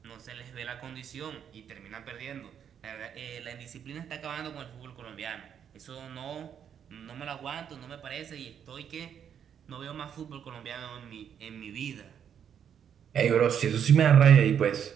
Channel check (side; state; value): left; quieter; 8.4 dB